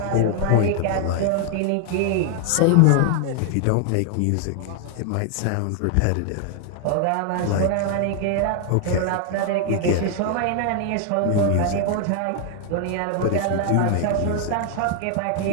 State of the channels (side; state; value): both; different; correlation 0.00